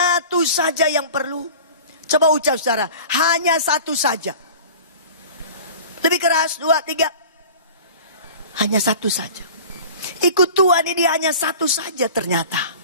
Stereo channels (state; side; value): inverted; both; correlation -0.40